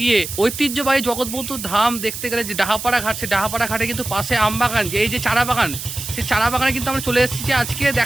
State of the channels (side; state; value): right; noise; hiss, 8 dB below the sound